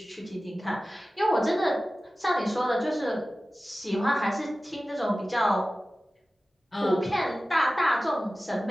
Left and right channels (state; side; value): normal; both; correlation 0.96